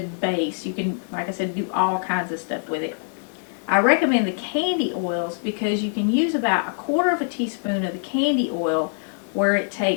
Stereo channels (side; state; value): right; silent; 58 dB below the other